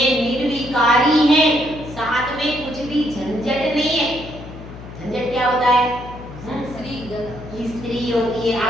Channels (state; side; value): noise; left; hum, 14 dB below the sound